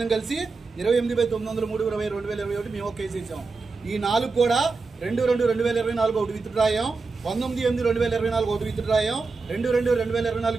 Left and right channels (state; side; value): quieter; left; 4.2 dB